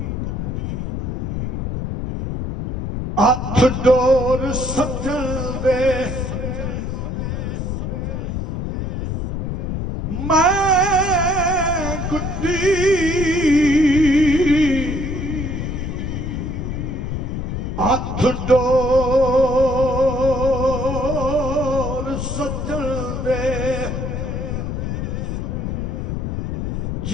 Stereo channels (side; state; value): left; noise; rumble, 3 dB below the sound